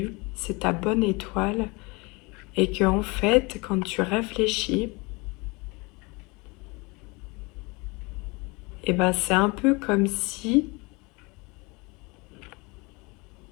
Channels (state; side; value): quieter; right; 26.9 dB